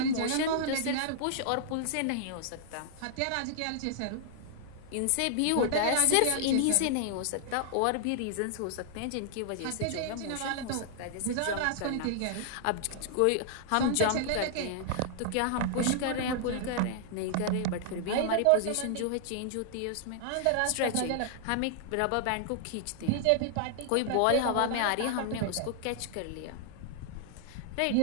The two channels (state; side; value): different; both; correlation -0.01